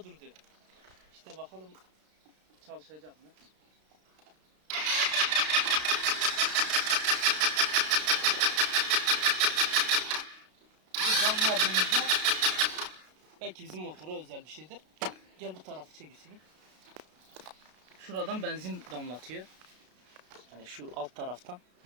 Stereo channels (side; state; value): left; late; 33 ms